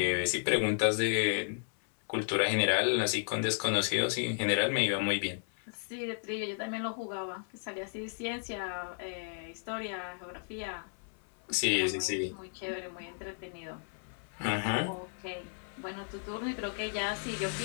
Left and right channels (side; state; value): right; silent; 55 dB below the other